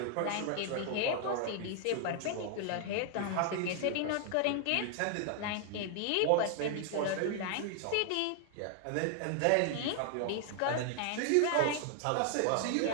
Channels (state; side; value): different; both; correlation 0.00